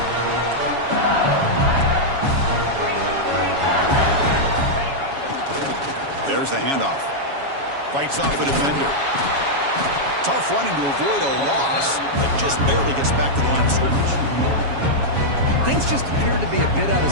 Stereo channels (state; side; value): late; left; 7.2 ms